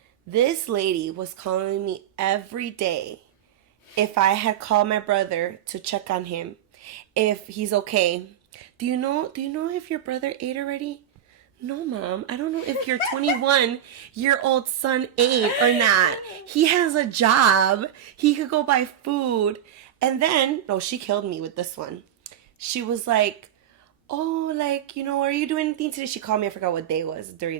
This lady was calling me every day if I had called my brother to check on him, if he's okay. Do you know if your brother ate already? No, Mom. I don't know if your 21-year-old son ate or not. He has a job. He could go buy food. And then, no, she killed me with this one. She was like, oh, like, you know, are you doing anything today? She called me. I forgot what day it was.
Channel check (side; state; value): left; quieter; 10.3 dB